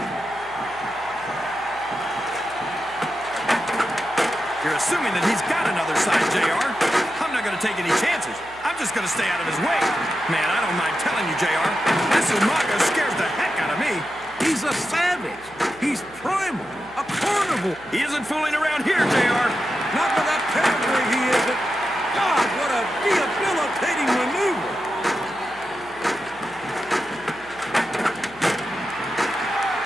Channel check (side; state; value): right; noise; hum, 24 dB below the sound